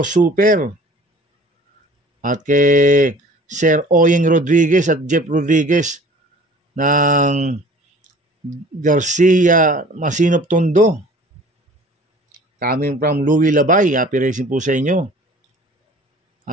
Super at kay Sir Oyeng Rodriguez at Jeff Rodriguez ng Garcia Masinop Tondo. Coming from Louis Labay. Happy racing po sa inyo.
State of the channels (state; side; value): normal; both; correlation 0.48